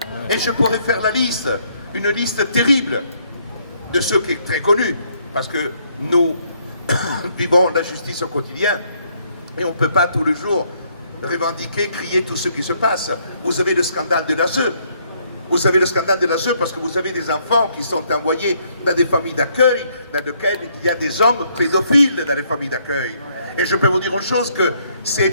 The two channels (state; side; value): inverted; both; correlation -0.69